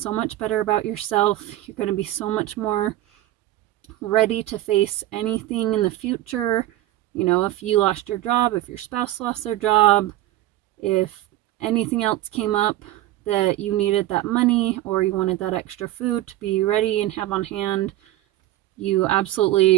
much better about yourself. You're going to be so much more ready to face anything in the future. If you lost your job, if your spouse lost their job, if anything else came up that you needed that money or you wanted that extra food to be ready and have on hand, you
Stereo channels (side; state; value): left; quieter; 15.2 dB